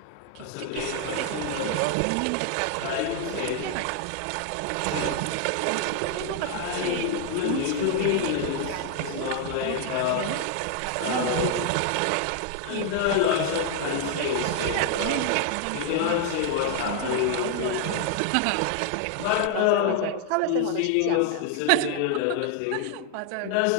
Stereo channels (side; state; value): both; different; correlation 0.00